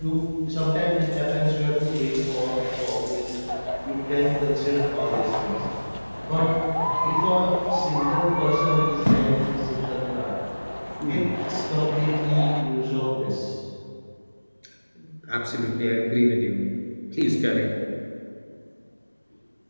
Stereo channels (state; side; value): inverted; both; correlation -1.00